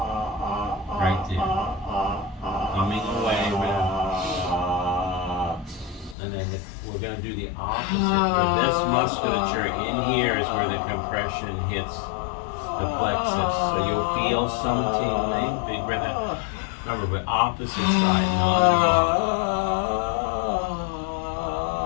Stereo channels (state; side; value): drops out; right; at 6.2 s